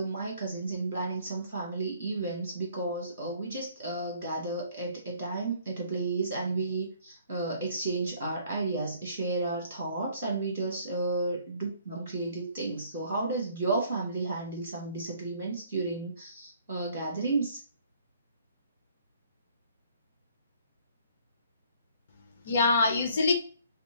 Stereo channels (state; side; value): inverted; both; correlation -0.59